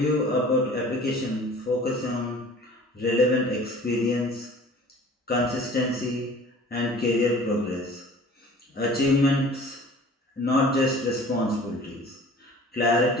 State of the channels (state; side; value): normal; both; correlation 0.46